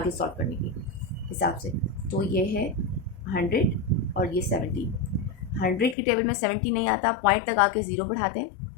सॉल्व करने के हिसाब से। तो ये है 100 और ये 17। 100 की टेबल में 70 नहीं आता, पॉइंट तक आके 0 बढ़ाते हैं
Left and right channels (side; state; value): right; drops out; at 6.0 s